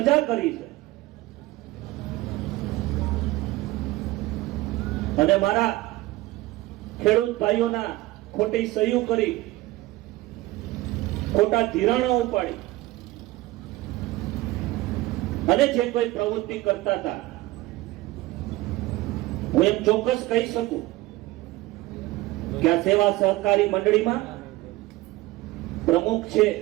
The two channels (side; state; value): left; quieter; 18.6 dB